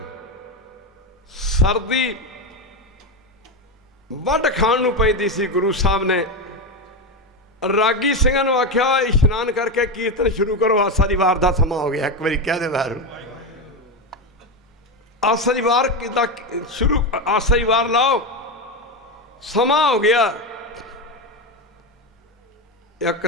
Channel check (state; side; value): normal; both; correlation 0.14